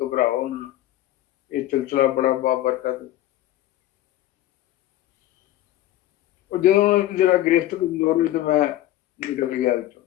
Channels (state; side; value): quieter; right; 14.3 dB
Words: ਨਾ, ਇਹ ਸਿਲਸਿਲਾ ਬੜਾ ਬਾਬਰਕਤ। ਉਹ ਜਦੋਂ ਜਿਹੜਾ ਗ੍ਰਿਫਤ ਕਮਜ਼ੋਰ ਹੋਈ ਤੇ ਮੈਂ ਨਿਕਲ ਗਿਆ ਵਿੱਚੋਂ,